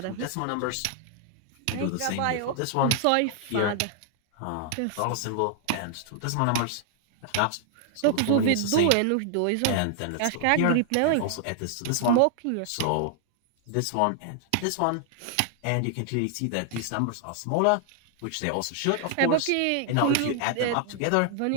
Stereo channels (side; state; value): both; different; correlation 0.00